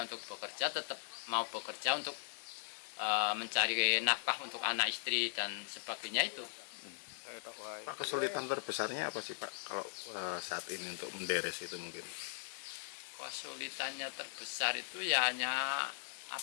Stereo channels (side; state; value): right; silent; digital silence